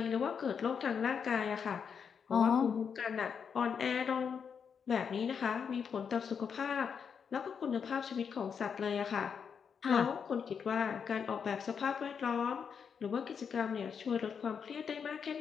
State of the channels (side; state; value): right; quieter; 6.7 dB